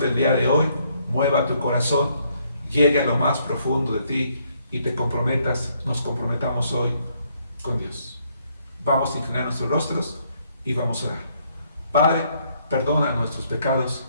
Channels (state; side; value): inverted; both; correlation -0.70